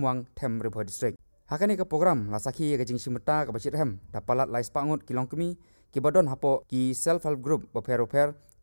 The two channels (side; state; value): both; inverted; correlation -1.00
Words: them Riboy District hakani ka program lasaki ya kajing simeta ka bachit hem dapalat lais pangut kilong kemi ki badon hapo ki self help group boper